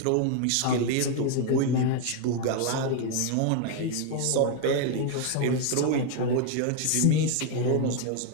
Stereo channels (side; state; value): both; different; correlation 0.01